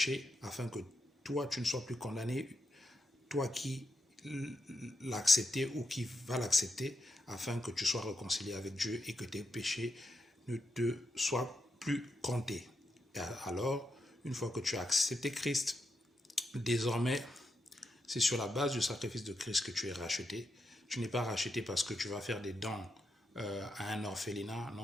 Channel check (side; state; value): both; normal; correlation 0.84